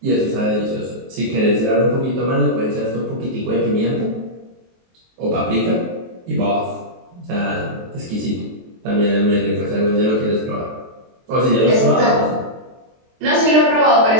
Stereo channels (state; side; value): late; left; 23 ms